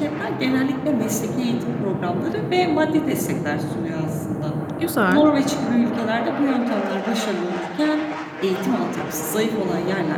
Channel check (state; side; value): identical; both; correlation 1.00